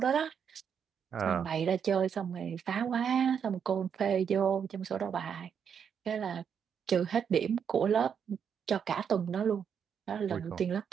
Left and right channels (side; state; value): left; quieter; 7.5 dB